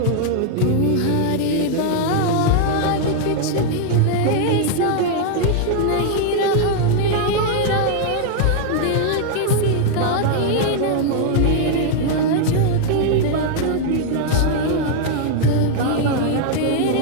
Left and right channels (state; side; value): different; both; correlation 0.00